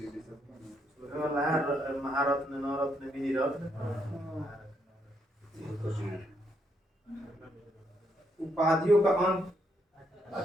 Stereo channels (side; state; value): both; normal; correlation 0.76